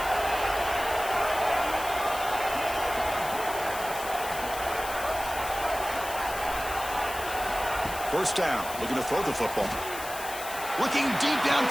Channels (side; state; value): left; noise; hiss, 10 dB below the sound